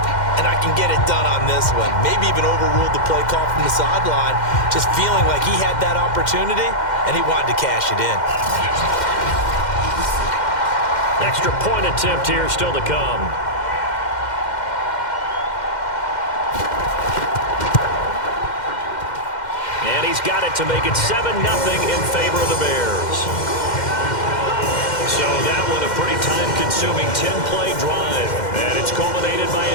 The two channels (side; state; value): right; late; 2.1 ms